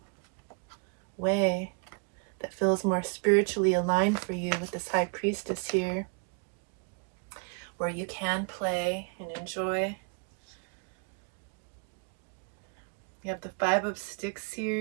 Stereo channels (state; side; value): quieter; left; 37.7 dB